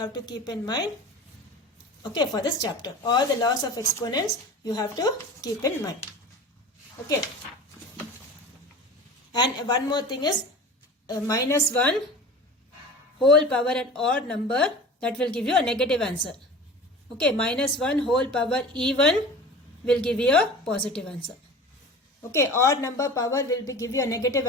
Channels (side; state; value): both; normal; correlation 0.37